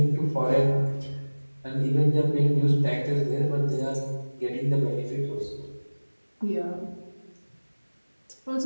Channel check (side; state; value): both; inverted; correlation -1.00